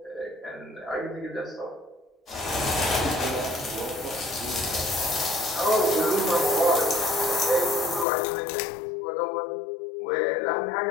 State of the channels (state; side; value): drops out; right; at 8.1 s